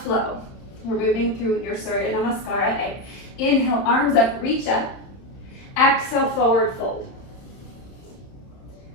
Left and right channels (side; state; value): right; late; 31 ms